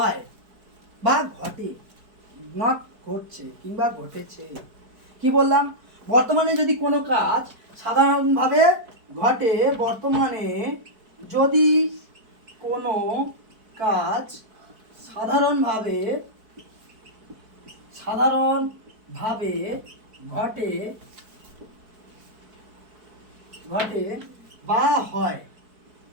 বা ঘটে, নট ঘটছে কিংবা ঘটেছে। কি বললাম? বর্তমানে যদি কোনো কাজ সাধারণভাবে ঘটে, বর্তমানে যদি কোনো কাজ সাধারণভাবে ঘটে বা হয়,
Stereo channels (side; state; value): left; late; 4.6 ms